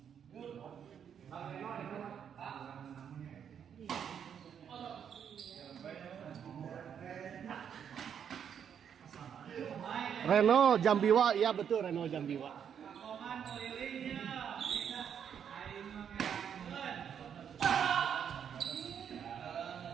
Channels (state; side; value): quieter; left; 8.1 dB